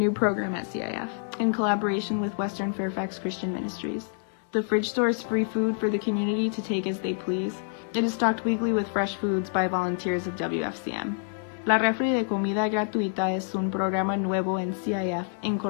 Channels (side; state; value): right; silent; digital silence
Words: program at CIF in collaboration with Western Fairfax Christian Ministries. The fridge stores free food for the community to take as they please. It is stocked weekly with fresh foods by volunteers of WFCM. La refri de comida gratuita es un programa nuevo en CIF en